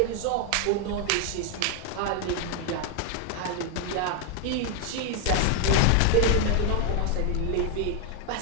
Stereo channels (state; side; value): different; both; correlation 0.00